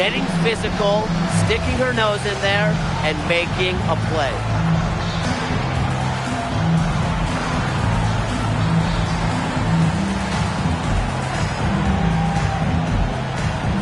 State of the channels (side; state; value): both; identical; correlation 1.00